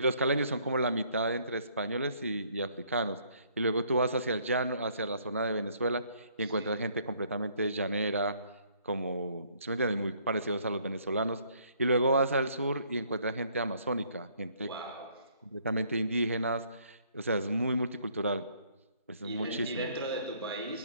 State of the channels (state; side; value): inverted; both; correlation -0.64